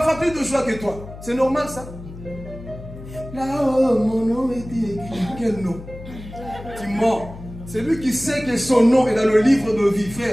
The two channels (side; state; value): left; noise; hum, 14 dB below the sound